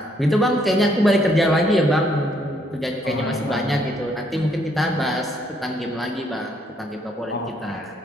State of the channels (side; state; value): both; normal; correlation 0.69